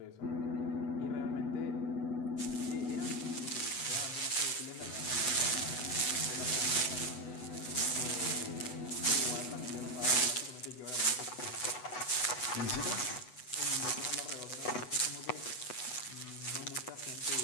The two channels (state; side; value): late; right; 8.1 ms